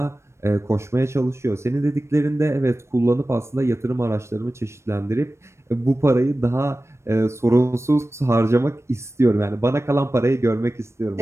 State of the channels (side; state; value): left; late; 0.13 ms